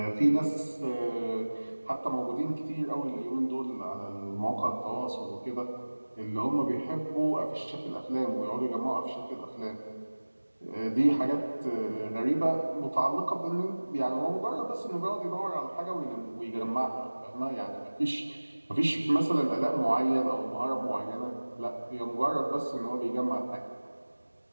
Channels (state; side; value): inverted; both; correlation -1.00